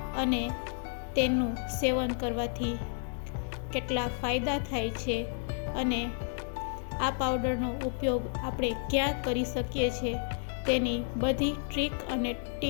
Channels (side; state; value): right; silent; 57 dB below the other